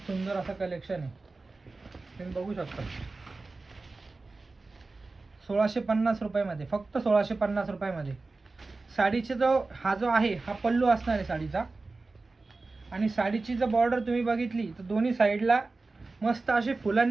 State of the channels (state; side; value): quieter; left; 3.6 dB